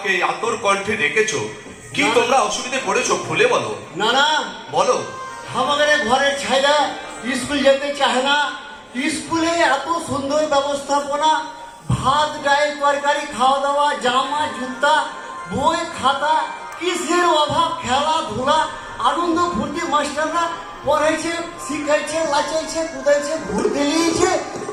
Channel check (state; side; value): identical; both; correlation 1.00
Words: এই আতর কণ্ঠে ডেকেছো? কি তোমরা অসুবিধায় পড়েছো খুলে বলো। না না, বলো। আমাদের ঘরের ছাইরা স্কুল যেতে চায় না। স্কুলে এত সুন্দর ব্যবস্থাপনা, ভাত ডাল তরকারি খাওয়া দাওয়া, জামা জুতা, বই খাতা, কিসের অভাব? খেলাধুলা, আনন্দ ফুর্তি, মাস্টাররা পড়াইছে, শিখাইছে, লাচাইছে, কুদাইছে, ঘুরতে নিয়েছে,